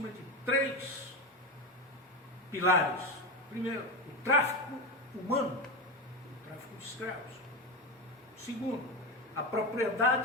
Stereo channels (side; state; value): both; normal; correlation 0.17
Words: de 3 pilares. Primeiro, o tráfico humano, o tráfico de escravos. Segundo, a